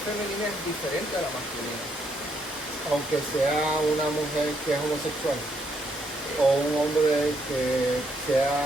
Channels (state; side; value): normal; both; correlation 0.74